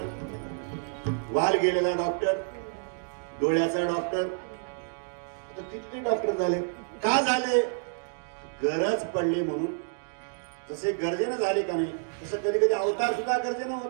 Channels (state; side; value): silent; left; digital silence